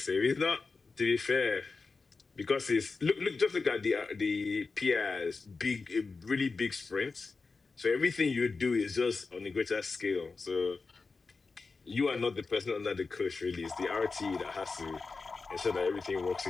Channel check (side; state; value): right; quieter; 4.3 dB